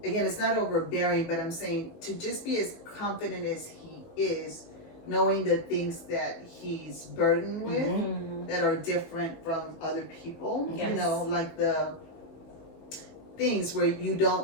Again, it's not overbearing, but I'm saying to just be as confident as he is, knowing the things that he's burdened with Mhm. that are different from other people, Yes. like the things where you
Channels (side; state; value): right; late; 18 ms